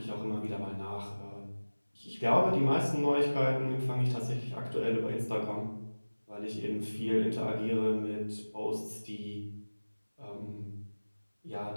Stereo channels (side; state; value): both; inverted; correlation -1.00